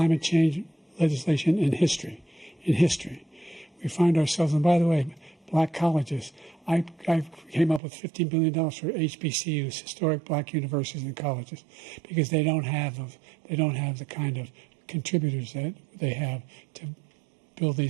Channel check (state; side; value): drops out; left; at 7.8 s